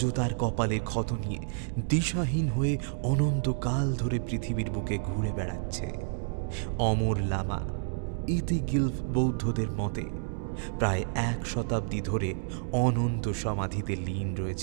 তার কপালের ক্ষত নিয়ে দিশাহীন হয়ে অনন্তকাল ধরে পৃথিবীর বুকে ঘুরে বেড়াচ্ছে। অমর লামা ইতিগিলফ বৌদ্ধদের মতে প্রায় 1 শতাব্দী ধরে অনন্ত সমাধিতে লীন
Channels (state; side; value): silent; left; digital silence